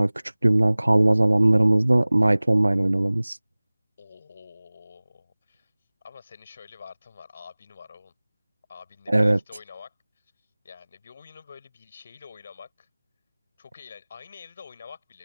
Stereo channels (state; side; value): inverted; both; correlation -1.00